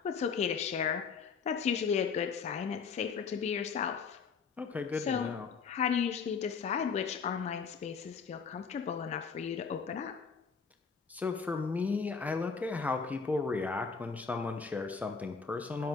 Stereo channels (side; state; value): right; quieter; 5.6 dB